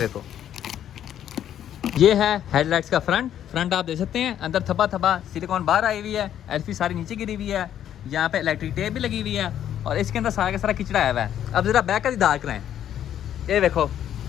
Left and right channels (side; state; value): right; quieter; 10.5 dB